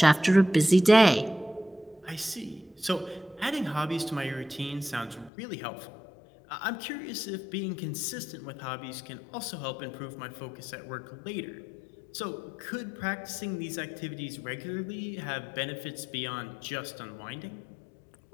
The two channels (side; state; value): right; drops out; at 5.3 s